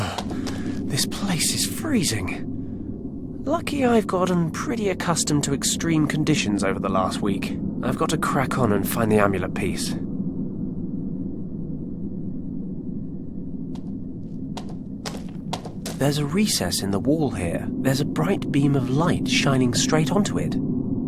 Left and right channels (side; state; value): both; identical; correlation 1.00